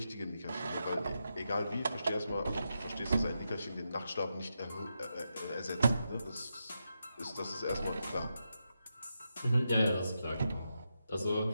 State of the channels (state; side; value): inverted; both; correlation -0.86